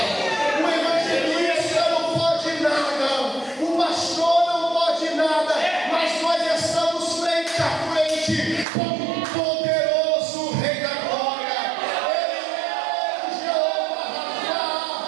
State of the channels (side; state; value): left; drops out; at 8.7 s